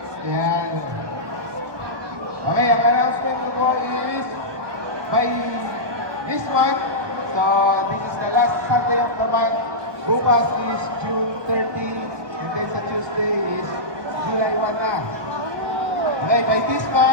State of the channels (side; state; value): left; late; 1.2 ms